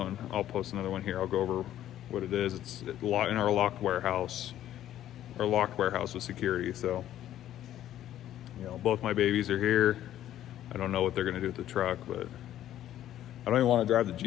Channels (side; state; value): right; quieter; 12.2 dB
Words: and I'll post another one here. I'll go over what it is. It's in our locked warehouse. Our locked warehouse with security. So, both my babies are here. I don't know what they're going to do with the truck, but I don't even want to drive the